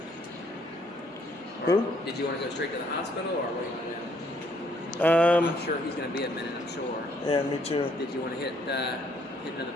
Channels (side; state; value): both; normal; correlation 0.67